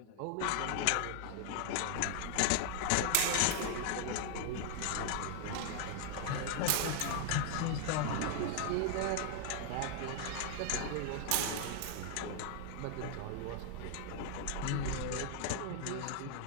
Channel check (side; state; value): both; different; correlation 0.00